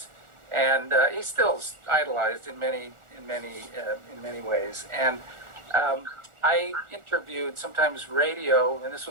and he's still idolized in many ways. And I interviewed sometimes radio, and this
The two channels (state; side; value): late; left; 1.4 ms